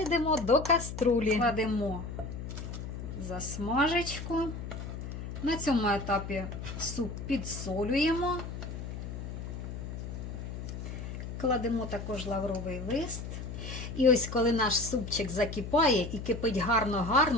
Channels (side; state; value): left; noise; hum, 7 dB below the sound